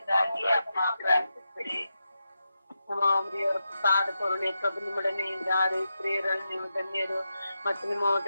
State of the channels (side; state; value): both; inverted; correlation -0.88